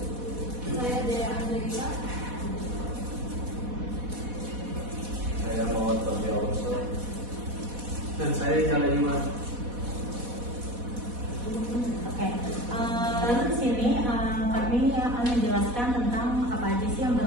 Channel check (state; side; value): late; left; 4.1 ms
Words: Saya Dea Angelika. Saya Muhammad Fadli Alonso. Dan saya Jala Iman. Oke, lalu di sini kami akan menjelaskan tentang apa aja sih yang